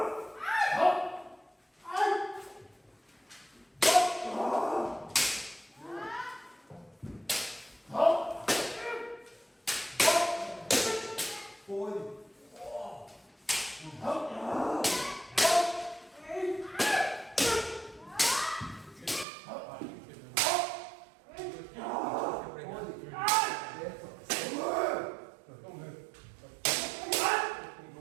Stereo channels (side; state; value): left; drops out; at 19.2 s